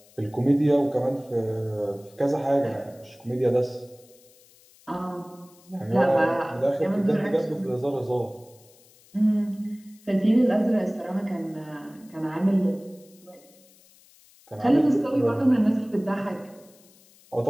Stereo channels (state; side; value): noise; left; hiss, 28 dB below the sound